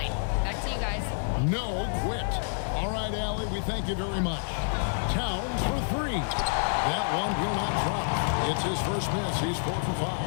Back to you guys. No quit. All right, Allie, we thank you very much. Towns for 3. That one will not drop. It's his first miss. He's 4 for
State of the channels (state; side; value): silent; right; digital silence